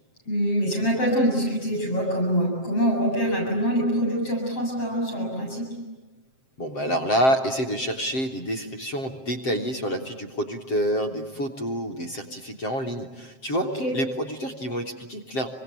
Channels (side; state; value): right; late; 7.6 ms